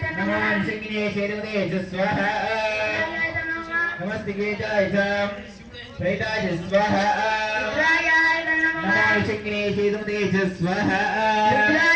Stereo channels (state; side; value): identical; both; correlation 1.00